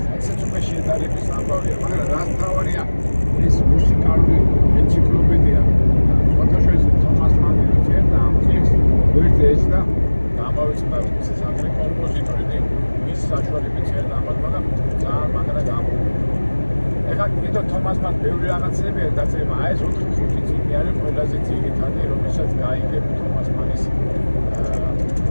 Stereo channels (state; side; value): inverted; both; correlation -1.00